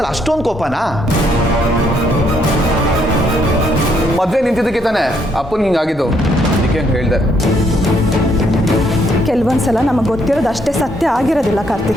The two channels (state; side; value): normal; both; correlation 0.71